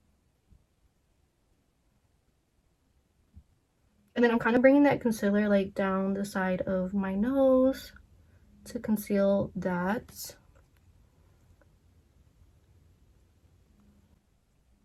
And then I'm kind of bringing that concealer like down the side of my nose to conceal that.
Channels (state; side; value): identical; both; correlation 1.00